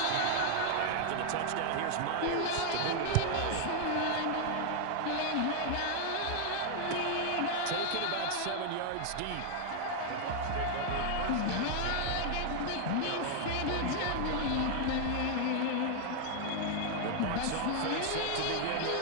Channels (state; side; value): different; both; correlation 0.00